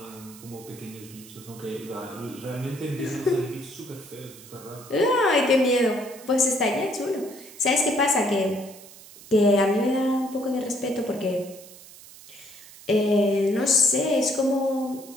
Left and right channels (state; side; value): noise; right; hiss, 19 dB below the sound